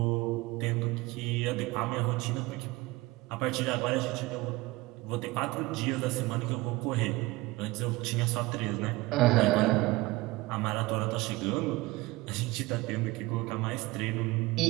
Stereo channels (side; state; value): left; quieter; 21.0 dB